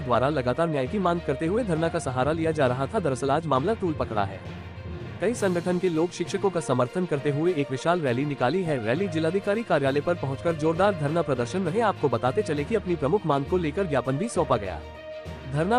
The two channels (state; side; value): identical; both; correlation 1.00